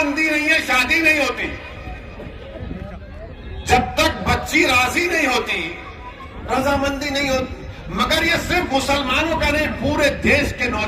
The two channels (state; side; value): identical; both; correlation 1.00